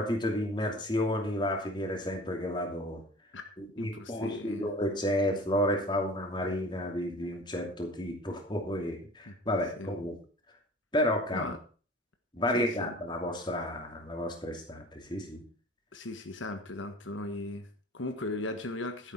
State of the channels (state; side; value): normal; both; correlation 0.42